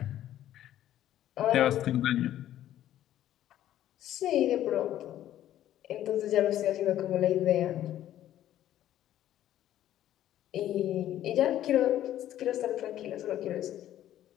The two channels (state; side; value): quieter; right; 12.4 dB